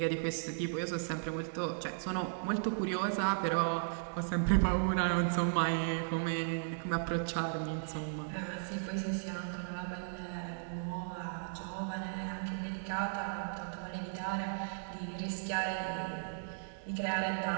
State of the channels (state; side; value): silent; left; digital silence